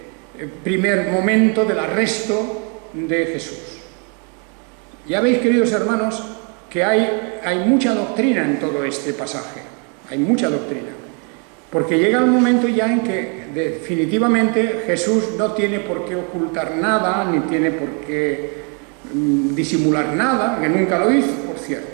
primer momento del arresto de Jesús. Ya veis, queridos hermanos, que hay mucha doctrina en todo este pasaje, hay mucha doctrina, porque llega el momento ya en que definitivamente Jesús no tiene por qué ocultar nada, ni tiene por qué disimular nada, que nunca lo hizo, por cierto,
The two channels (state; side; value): quieter; left; 36.8 dB